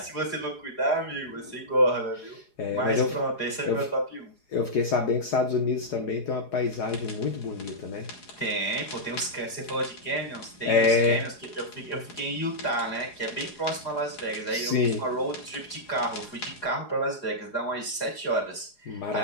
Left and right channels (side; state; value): right; late; 4.8 ms